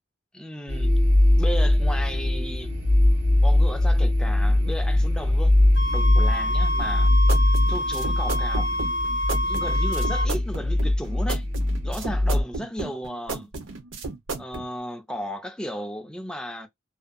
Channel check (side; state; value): both; normal; correlation 0.83